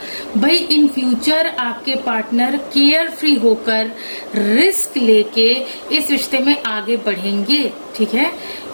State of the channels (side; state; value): both; inverted; correlation -1.00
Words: भाई, इन फ्यूचर आपके पार्टनर केयर फ्री होकर रिस्क लेके इस रिश्ते में आगे बढ़ेंगे, ठीक है।